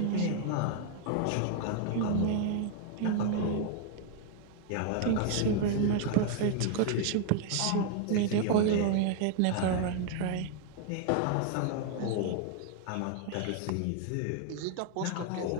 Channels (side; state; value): both; different; correlation 0.00